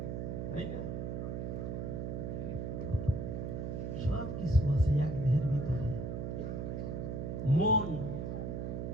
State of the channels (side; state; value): right; noise; hum, 3 dB below the sound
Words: তাই না? সবকিছু আছে এক দেহের ভিতরে। মন,